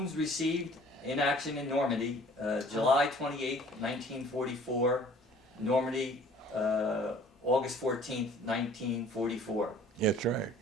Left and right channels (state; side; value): normal; both; correlation 0.52